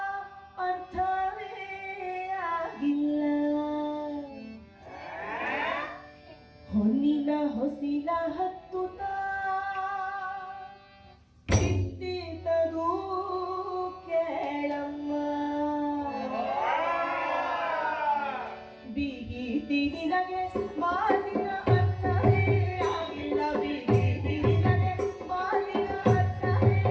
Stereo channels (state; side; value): identical; both; correlation 1.00